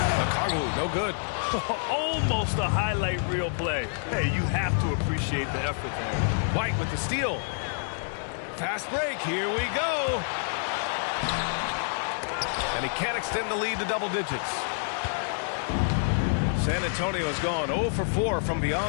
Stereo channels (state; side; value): silent; right; digital silence